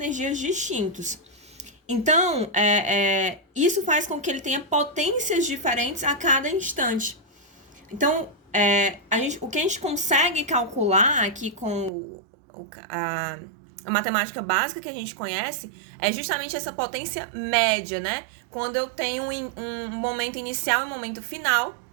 distintos. Então, isso faz com que ele tenha potências diferentes a cada instante. Então, o que a gente consegue calcular aqui com a matemática básica que a gente conhece é justamente essa potência média, né? Quando eu tenho um momento inicial e um momento final,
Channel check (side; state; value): left; drops out; at 11.9 s